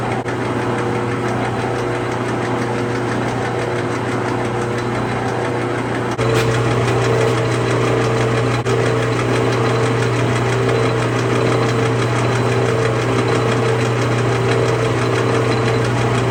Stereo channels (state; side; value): identical; both; correlation 1.00